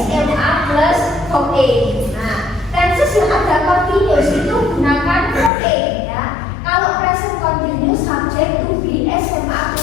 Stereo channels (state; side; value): drops out; right; at 5.5 s